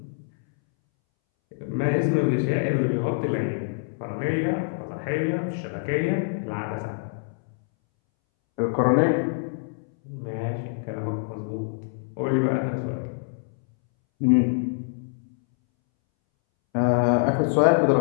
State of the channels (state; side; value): silent; right; 62 dB below the other